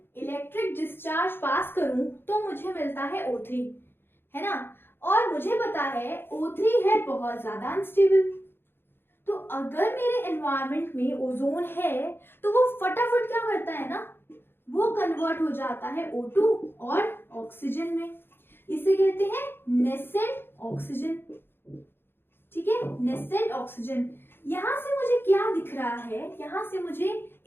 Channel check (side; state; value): right; late; 0.10 ms